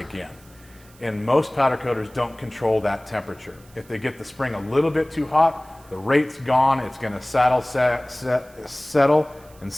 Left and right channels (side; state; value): right; noise; hiss, 27 dB below the sound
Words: And most powder coaters don't control that temperature. If they get the spring a little bit too hot, the rate's gone, it's gonna settle and